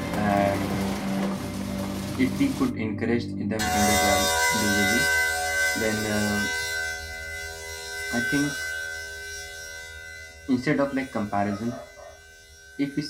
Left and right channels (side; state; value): both; identical; correlation 1.00